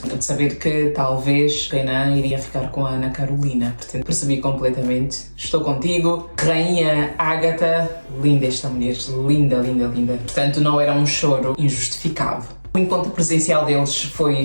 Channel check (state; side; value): inverted; both; correlation -1.00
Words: de saber que talvez o Renan iria ficar com a Ana Carolina. Portanto, percebi completamente. Estou contigo, Rainha Agatha. Linda esta mulher, linda, linda, linda. Portanto, não era um choro injustificado. O encontro presencial deles